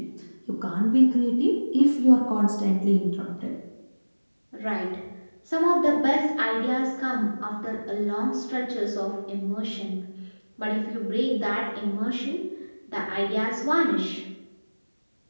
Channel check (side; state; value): both; inverted; correlation -1.00